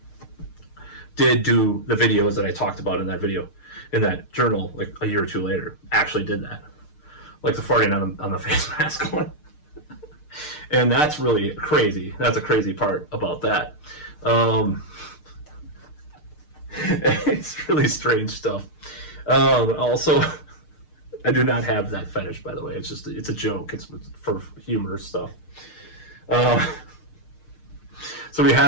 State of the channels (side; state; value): right; late; 6.6 ms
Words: Did do the videos that I talked about in that video, in that journal, like a year or two later. Actually did that, like the farting on the face mask one. And that's really crazy. That's a crazy part about that. It's really strange stuff. Also, I do not have that fetish, by the way. It's a joke. It's for humor stuff. So we